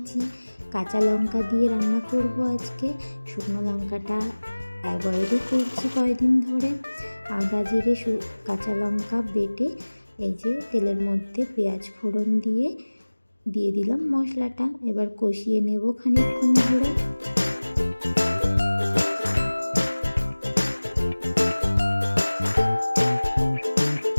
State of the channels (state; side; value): inverted; both; correlation -1.00